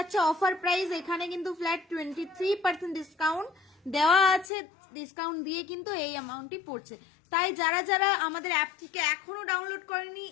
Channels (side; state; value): right; drops out; at 4.5 s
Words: অফার প্রাইস, এখানে কিন্তু ফ্ল্যাট 23% ডিসকাউন্ট দেওয়া আছে, ডিসকাউন্ট দিয়ে কিন্তু এই অ্যামাউন্টটি পড়ছে। তাই যারা যারা আমাদের অ্যাপটিকে এখনো ডাউনলোড করেনি,